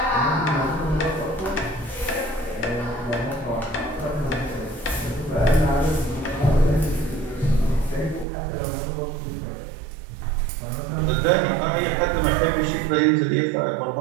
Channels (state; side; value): drops out; left; at 8.2 s